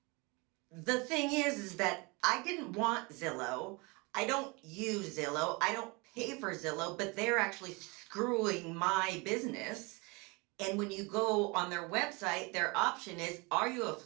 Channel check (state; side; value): quieter; left; 27.6 dB